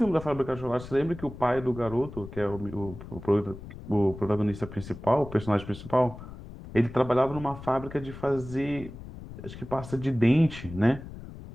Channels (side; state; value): left; noise; rumble, 13 dB below the sound